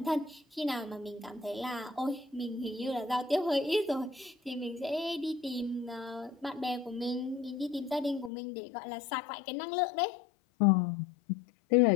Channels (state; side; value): drops out; right; at 8.3 s